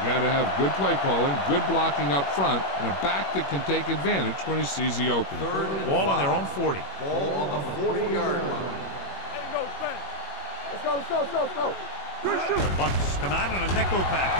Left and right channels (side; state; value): right; late; 21 ms